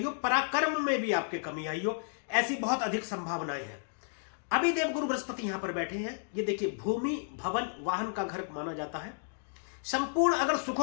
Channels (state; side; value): silent; right; digital silence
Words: हो, पराक्रम में भी आपके कमी आई हो। ऐसी बहुत अधिक संभावनाएं हैं। अभी देवगुरु बृहस्पति यहां पर बैठे हैं। ये देखिए, भूमि भवन वाहन का घर माना जाता है। संपूर्ण अगर